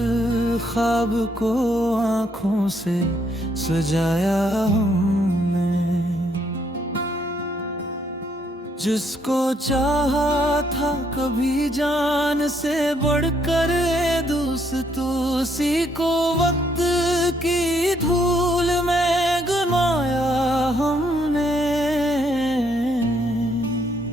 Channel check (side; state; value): both; normal; correlation 0.72